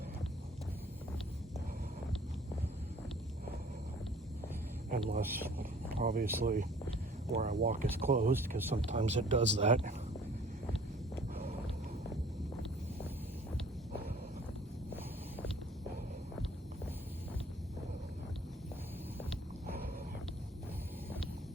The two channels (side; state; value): both; normal; correlation 0.53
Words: Unless, obviously, where I walk is closed, because sometimes it does that.